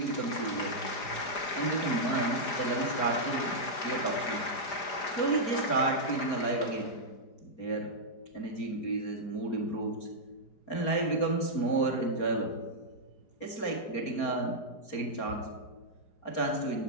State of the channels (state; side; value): late; right; 5.0 ms